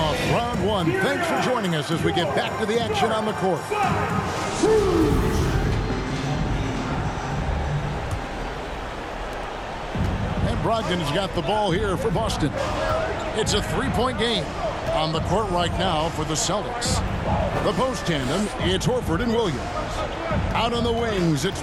round 1. Thanks for joining us as we get back to the action on the court. And Brogdon's got the ball here for Boston. It's a 3-point game on the court right now for the Celtics. The post tandem, it's Horford and Williams. Out on the wings, it's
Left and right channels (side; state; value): both; identical; correlation 1.00